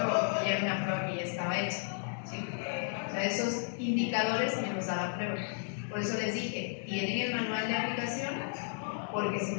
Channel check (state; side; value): silent; right; 55 dB below the other